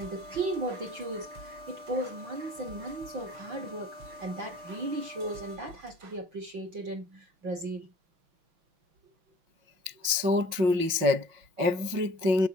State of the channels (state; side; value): late; left; 5.5 ms